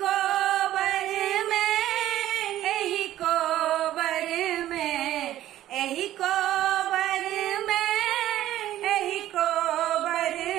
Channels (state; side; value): quieter; left; 13.4 dB